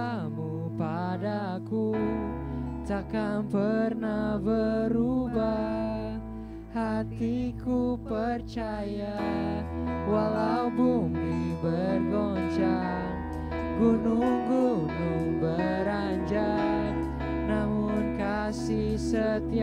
padaku takkan pernah berubah. Hatiku percaya walau bumi bergoncang, gunung-gunung beranjak, namun kasih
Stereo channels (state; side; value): identical; both; correlation 1.00